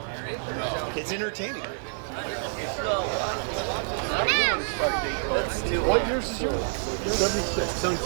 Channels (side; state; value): left; silent; 56 dB below the other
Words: it's entertaining. There you go. What years is yours? 76.